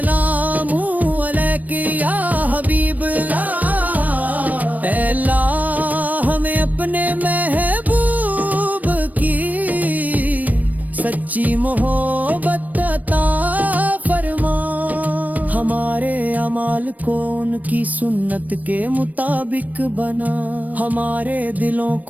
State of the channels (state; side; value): late; left; 0.077 ms